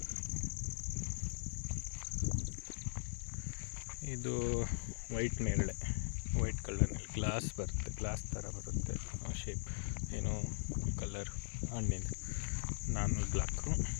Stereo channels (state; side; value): silent; right; digital silence